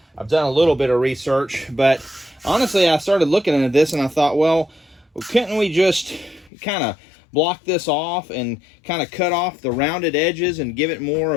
I've done a little bit of research. But honestly, I started looking into this and I thought, well, couldn't we just kind of block this off and kind of cut off the rounded edges and give it more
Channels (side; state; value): right; drops out; at 6.5 s